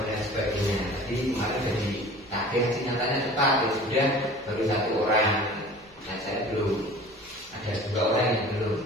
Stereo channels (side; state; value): both; normal; correlation 0.43